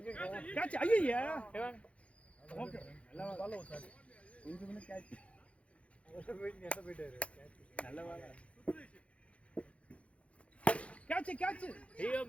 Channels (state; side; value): late; right; 0.063 ms